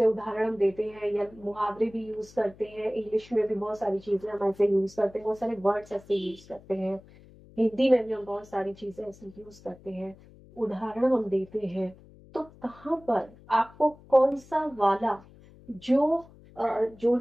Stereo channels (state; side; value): noise; left; hum, 23 dB below the sound